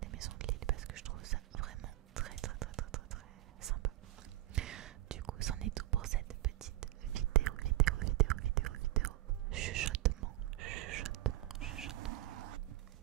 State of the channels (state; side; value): quieter; left; 16.2 dB